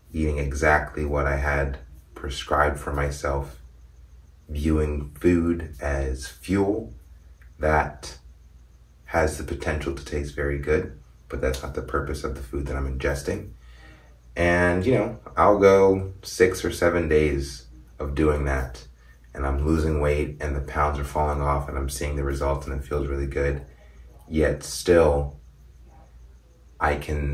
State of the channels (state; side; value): identical; both; correlation 1.00